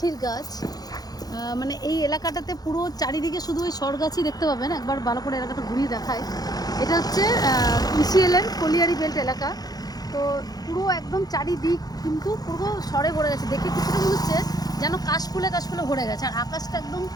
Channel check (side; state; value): right; late; 0.19 ms